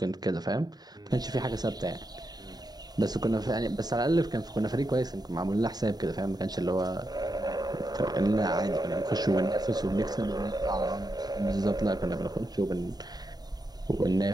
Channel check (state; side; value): late; left; 0.19 ms